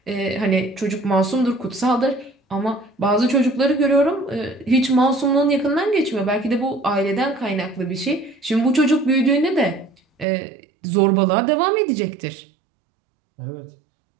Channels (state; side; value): drops out; left; at 10.2 s